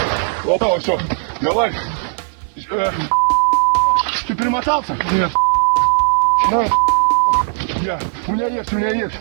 Опа, все. Давай. Ты перемотался? Нет. У меня есть.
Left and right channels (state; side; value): silent; left; 60 dB below the other